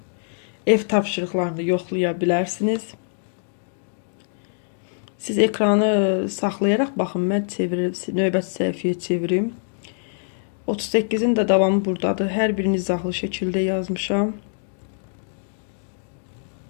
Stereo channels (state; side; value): silent; right; digital silence